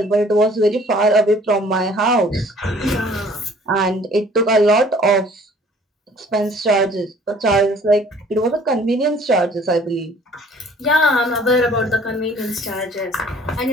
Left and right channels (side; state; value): both; normal; correlation 0.54